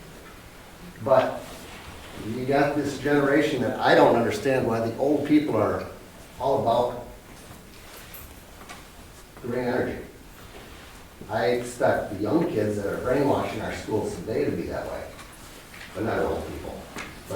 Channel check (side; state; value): both; identical; correlation 1.00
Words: But you got this generation that I don't understand why the old people are all about green energy. I expect the young kids that are brainwashed in our schools today to be that way, but not old people.